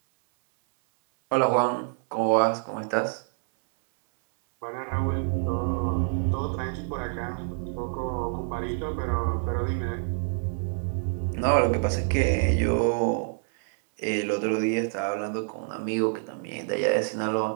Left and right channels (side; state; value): left; silent; 60 dB below the other